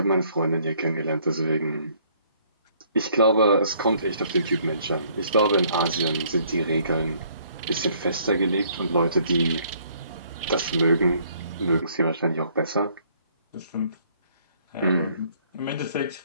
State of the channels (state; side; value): inverted; both; correlation -0.63